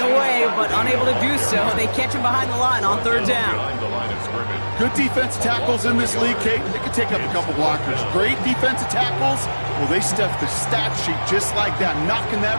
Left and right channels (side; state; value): both; inverted; correlation -1.00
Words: away, but unable to do so. They catch him behind the line on 3rd down. Behind the line of scrimmage. Good defense tackles in this league, Kate. They can take up a couple blockers. Great defensive tackles. Well, they stuff the stat sheet just like that, knocking